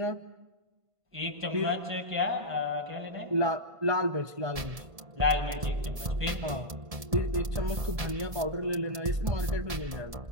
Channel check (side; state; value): left; late; 1.7 ms